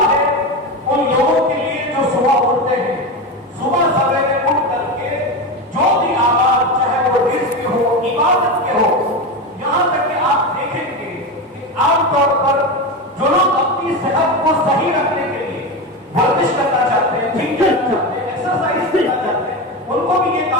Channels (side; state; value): both; normal; correlation 0.19